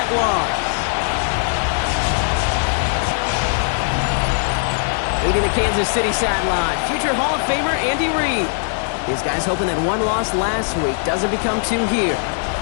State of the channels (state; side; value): silent; right; digital silence